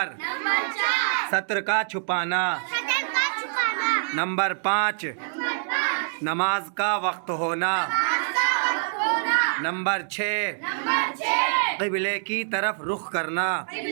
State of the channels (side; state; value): left; silent; digital silence